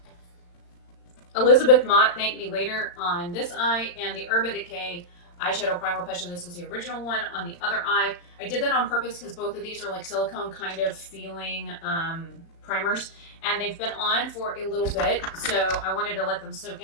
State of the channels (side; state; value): right; late; 36 ms